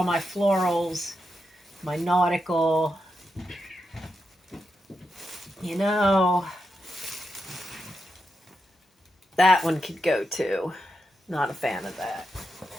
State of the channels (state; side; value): normal; both; correlation 0.86